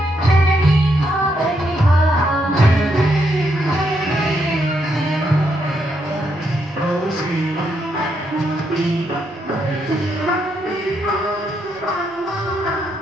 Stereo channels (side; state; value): both; normal; correlation 0.78